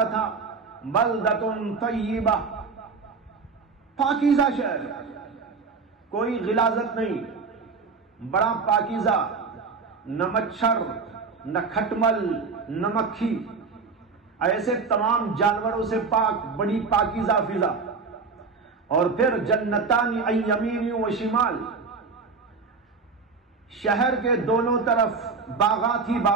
تھا، بلدۃ طیبہ، پاکیزہ شہر، کوئی غلاظت نہیں، بڑا پاکیزہ، نہ مچھر، نہ کھٹمل، نہ مکھی، ایسے تمام جانوروں سے پاک، بڑی پاکیزہ فضا۔ اور پھر جنتان عن یمین و شمال، شہر کے دونوں طرف باغات ہی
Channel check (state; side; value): quieter; left; 4.6 dB